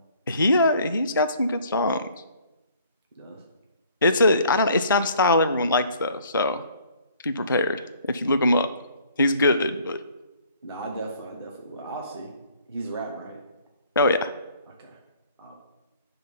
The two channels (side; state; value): both; inverted; correlation -0.58